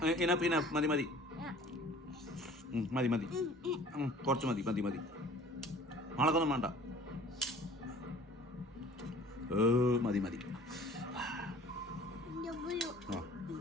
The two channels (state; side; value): normal; both; correlation 0.48